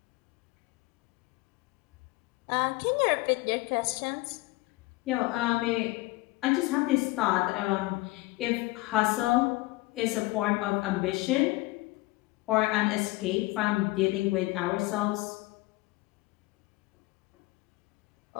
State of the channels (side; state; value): right; quieter; 21.3 dB